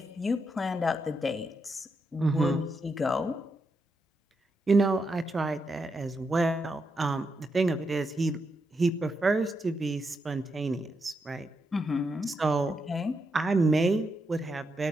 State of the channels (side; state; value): both; normal; correlation 0.83